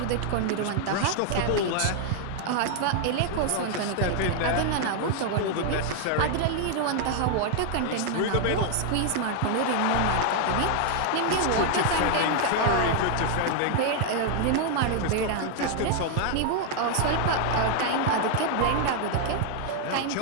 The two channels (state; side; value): different; both; correlation 0.00